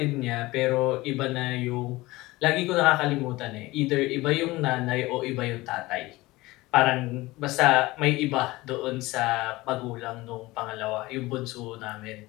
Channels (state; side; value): quieter; right; 20.1 dB